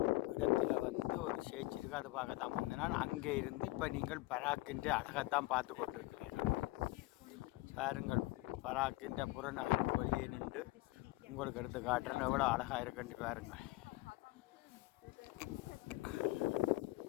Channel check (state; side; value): quieter; right; 20.5 dB